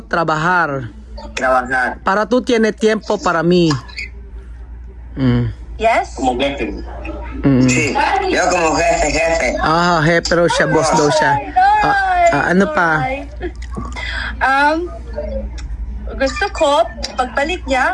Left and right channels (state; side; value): identical; both; correlation 1.00